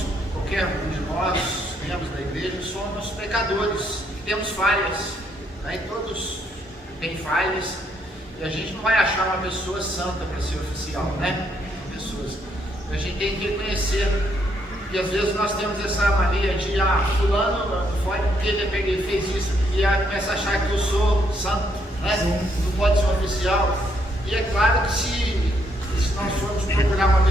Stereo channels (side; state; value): both; normal; correlation 0.73